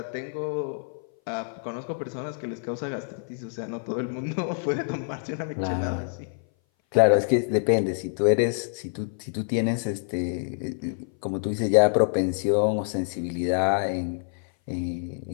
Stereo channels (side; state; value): right; silent; 58 dB below the other